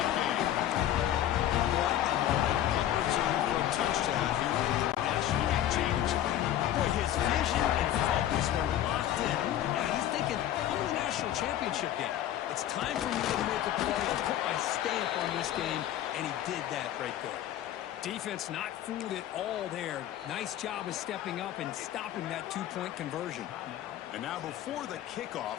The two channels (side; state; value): right; quieter; 12.0 dB